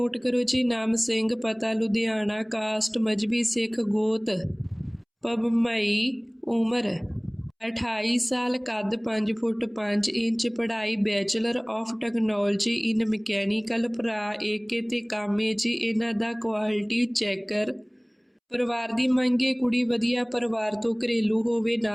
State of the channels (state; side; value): identical; both; correlation 1.00